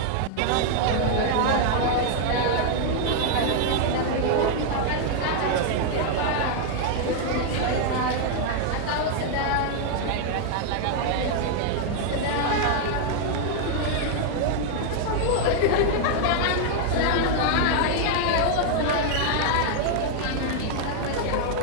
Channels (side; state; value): both; different; correlation 0.00